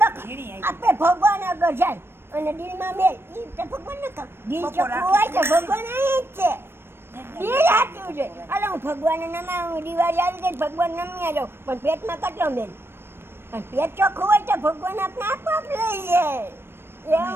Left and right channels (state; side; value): late; left; 0.11 ms